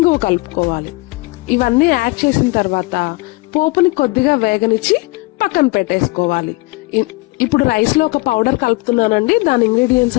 కలుపుకోవాలి. ఇవన్నీ యాడ్ చేసిన తర్వాత పోపుని కొద్దిగా వేగనిచ్చి పక్కన పెట్టేసుకోవాలి. ఇప్పుడు రైస్ లో ఒక పౌడర్ కలుపుతున్నానండి. దాని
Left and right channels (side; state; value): right; quieter; 23.7 dB